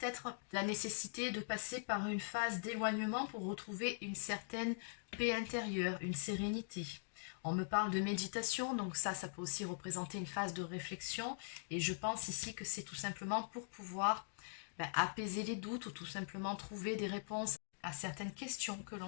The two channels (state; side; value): silent; right; digital silence